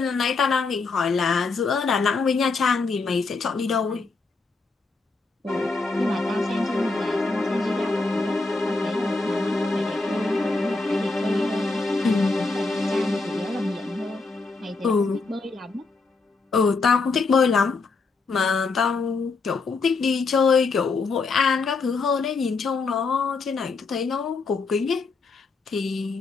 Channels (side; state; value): right; quieter; 4.0 dB